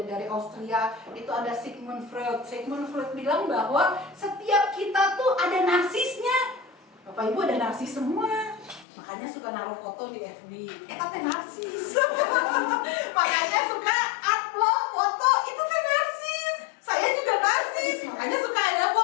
dari Austria, itu ada Sigmund Freud. Sigmund Freud bilang bahwa setiap kita tuh ada narsisnya. Bapak Ibu ada narsis semua, makanya suka naruh foto di FB. Teh narsis. Makanya suka upload foto, itu teh narsis. Saya juga narsis, makanya suka ada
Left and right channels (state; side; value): drops out; right; at 8.8 s